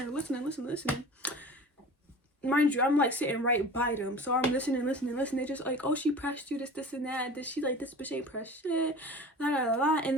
there listening. Mind you, I'm like sitting right by them. So I'm listening. They just like, oh, she pressed you, this and that. She like, this bitch ain't pressed shit. La, la, la, la. And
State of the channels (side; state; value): both; normal; correlation 0.39